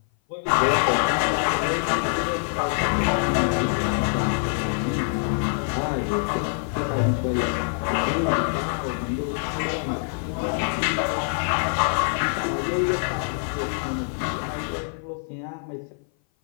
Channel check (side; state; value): right; silent; 57 dB below the other